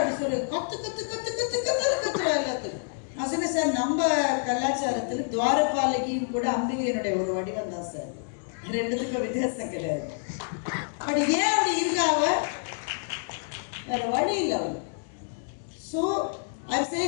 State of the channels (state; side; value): silent; right; digital silence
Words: சொல்லு? கத்து கத்து கத்து கத்து கத்து கத்துறா எல்லாத்துக்கும். நான் சொன்னேன், சார் நம்ம கலாச்சாரத்துல துவாரபாலகியும் கூட அம்பிகையினுடைய ஒரு வடிவம் தான் சார், ரெண்டுத்துக்கும் வித்தியாசம் கிடையாது. பட் ஏன் அப்படி இருக்காவ? வேற வழி இல்லை அவளுக்கு. So I'm